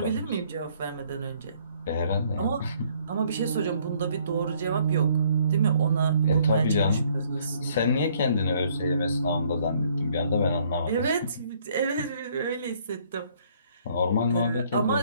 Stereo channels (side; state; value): both; inverted; correlation -0.63